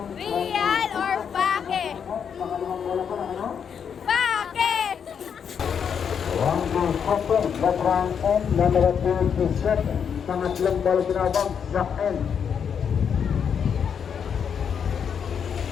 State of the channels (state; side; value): quieter; right; 7.4 dB